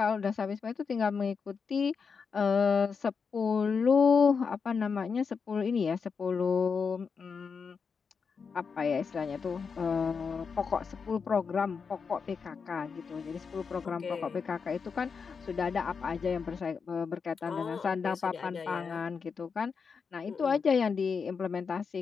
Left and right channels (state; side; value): quieter; right; 5.6 dB